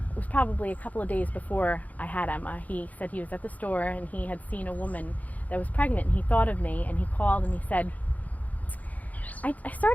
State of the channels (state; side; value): late; right; 0.076 ms